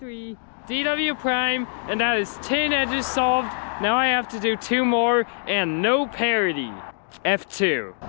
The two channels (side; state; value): right; silent; digital silence